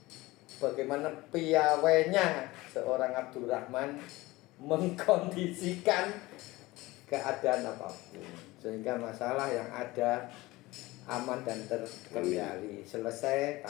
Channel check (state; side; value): quieter; right; 20.1 dB